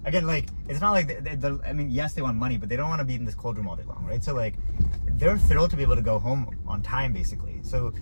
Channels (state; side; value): inverted; both; correlation -1.00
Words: Again, like, it's not like, I mean, yes, they want money, but they don't want to be in this cold room all day long, right? So, like, they're thrilled to be able to go home on time, basically. So,